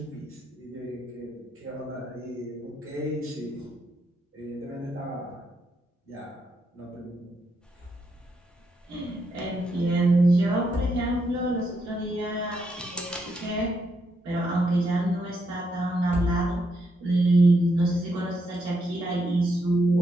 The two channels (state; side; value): normal; both; correlation 0.78